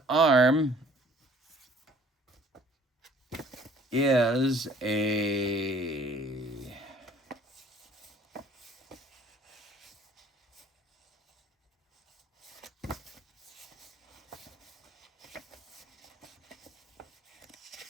arm is a...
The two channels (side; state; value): both; normal; correlation 0.55